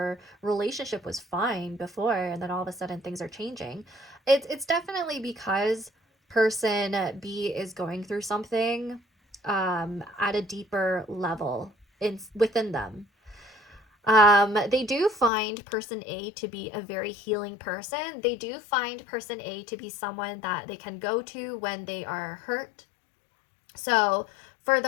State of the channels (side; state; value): right; drops out; at 15.3 s